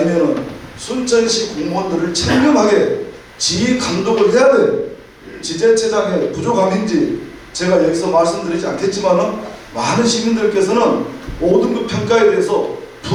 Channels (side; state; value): both; identical; correlation 1.00